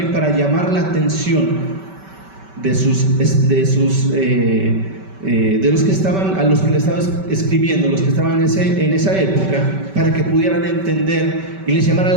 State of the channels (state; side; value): late; left; 5.2 ms